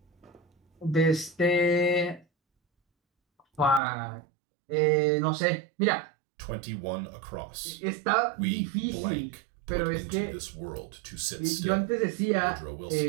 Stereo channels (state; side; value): drops out; left; at 3.8 s